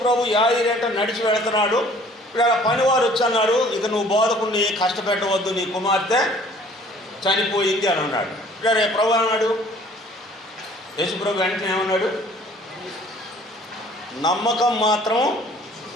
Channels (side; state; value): both; normal; correlation 0.54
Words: ప్రభు యాయిరు ఎంట నడిచి వెళుతున్నాడు. ఇక్కడ పనివారు వచ్చి అన్నాడు, ఇక నువ్వు బోధకుడిని కష్టపెట్టవద్దు, నీ కుమార్తె చనిపోయింది అని అన్నాడు. ఇక్కడ ప్రభు అన్నాడు, యేసు ప్రభు వెంటనే ఏమన్నాడు, నమ్మకం మాత్రం